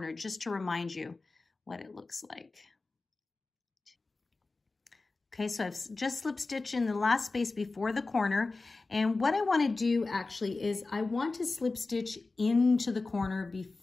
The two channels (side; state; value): right; quieter; 3.6 dB